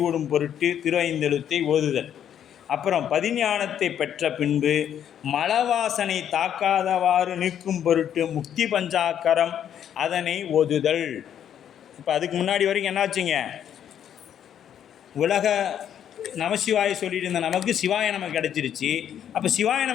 பொருட்டு திரு ஐந்தெழுத்தை ஓதுதல். அப்புறம் பதிஞானத்தை பெற்ற பின்பு மலவாசனை தாக்காதவாறு நீக்கும் பொருட்டு முக்தி பஞ்சாக்கரம் அதனை ஓதுதல். இப்போ அதுக்கு முன்னாடி வரைக்கும் என்னாச்சுங்க? உலக நமசிவாய சொல்லிட்டு இருந்த நமக்கு சிவாய நமக்கு கிடச்சிருச்சு. அப்போ சிவாய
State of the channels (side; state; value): right; quieter; 9.6 dB